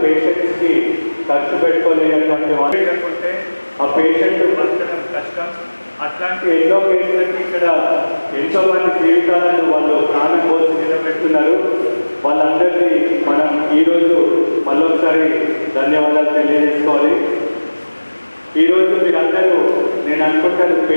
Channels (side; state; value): both; inverted; correlation -1.00